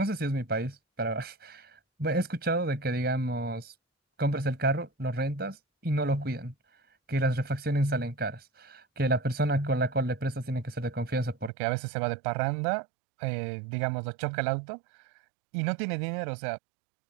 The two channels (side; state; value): left; drops out; at 11.5 s